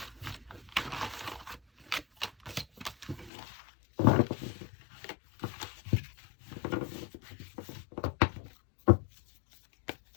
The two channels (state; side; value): drops out; right; at 3.3 s